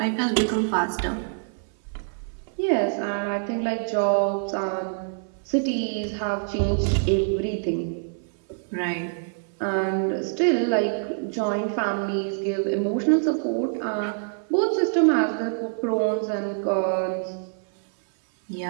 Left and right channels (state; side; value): silent; left; 61 dB below the other